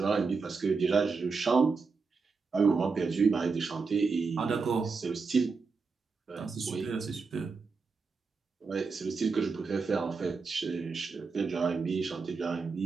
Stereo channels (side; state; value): left; quieter; 4.7 dB